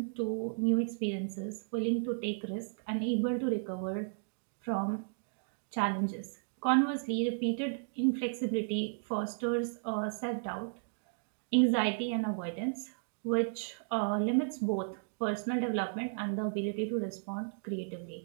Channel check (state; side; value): silent; left; digital silence